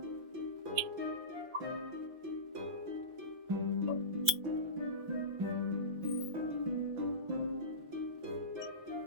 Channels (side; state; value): left; late; 5.9 ms